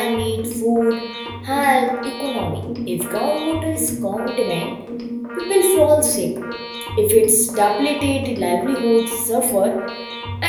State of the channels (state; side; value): identical; both; correlation 1.00